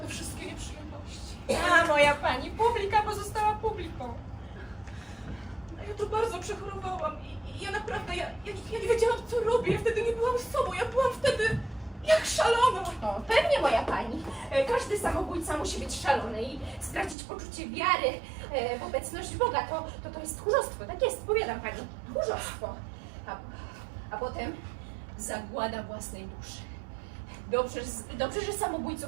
wszystkie nieprzyjemności. A moja pani, publika pozostała publiką. Ja to bardzo przechorowałam i ja naprawdę, ja nie wiedziałam co robię, ja wtedy nie byłam sobą, ja byłam wtedy jak szalona. O, pewnie moja pani. Każdy samobójca musi być szalony i stracić poczucie wiary w obecność Boga. To jest tchórzostwo, tak jest, powiadam pani. Tchórzostwo. A potem zagłada własnej duszy. Dobrze, że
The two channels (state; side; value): drops out; left; at 17.2 s